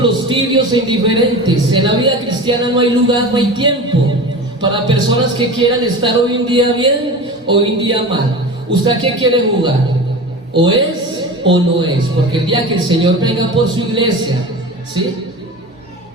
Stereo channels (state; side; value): normal; both; correlation 0.32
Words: tibios e indiferentes. En la vida cristiana no hay lugar, no hay tiempo para personas que quieran estar hoy en día bien, hoy en día mal. ¿Usted a qué quiere jugar? ¿O es o no es? Porque el día que el Señor venga por su iglesia, ¿sí?